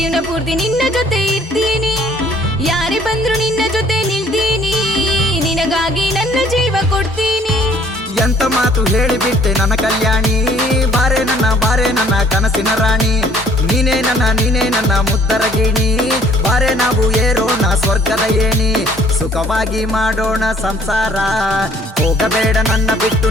ಪೂರ್ತಿ ನಿನ್ನ ಜೊತೆ ಇರ್ತೀನಿ ಯಾರೇ ಬಂದ್ರು ನಿನ್ನ ಜೊತೆ ನಿಲ್ತೀನಿ ನಿನಗಾಗಿ ನನ್ನ ಜೀವ ಕೊಡ್ತೀನಿ ಎಂತ ಮಾತು ಹೇಳಿಬಿಟ್ಟೆ ನನ್ನ ಕಲ್ಯಾಣಿ ಬಾರೆ ನನ್ನ ಕನಸಿನ ರಾಣಿ ನೀನೇ ನನ್ನ ಮುದ್ದರ ಗಿಣಿ ಬಾರೆ ನಾವು ಏರೋಣ ಸ್ವರ್ಗದ ಏಣಿ ಸುಖವಾಗಿ ಮಾಡೋಣ ಸಂಸಾರ ಹೋಗಬೇಡ ನನ್ನ ಬಿಟ್ಟು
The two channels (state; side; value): normal; both; correlation 0.58